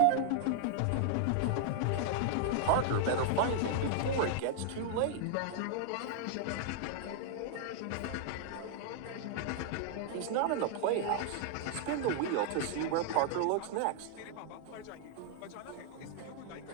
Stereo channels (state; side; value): different; both; correlation -0.01